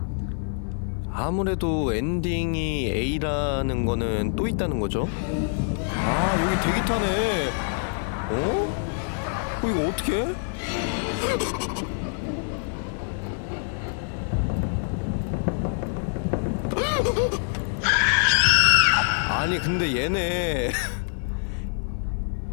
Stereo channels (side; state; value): right; silent; 61 dB below the other